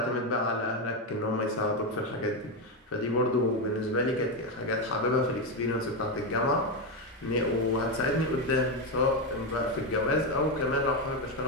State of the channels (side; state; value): both; normal; correlation 0.09